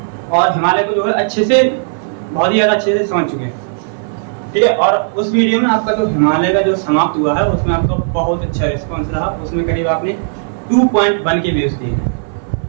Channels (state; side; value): silent; left; 60 dB below the other